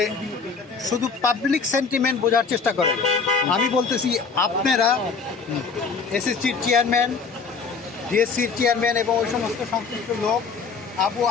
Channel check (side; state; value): right; quieter; 5.1 dB